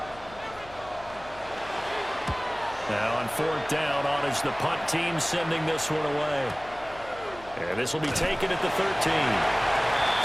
Now on fourth down, on is the punt team sending this one away. And this will be taken at the 13.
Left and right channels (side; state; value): left; noise; hum, 20 dB below the sound